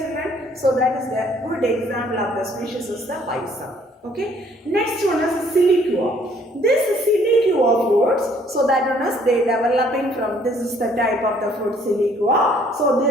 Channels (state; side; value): normal; both; correlation 0.62